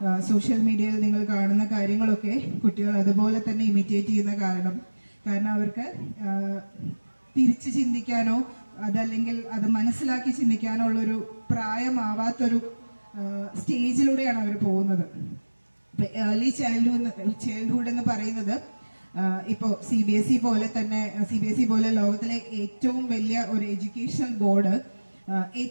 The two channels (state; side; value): inverted; both; correlation -1.00